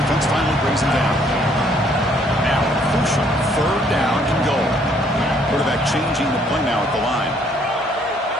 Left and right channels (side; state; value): both; normal; correlation 0.65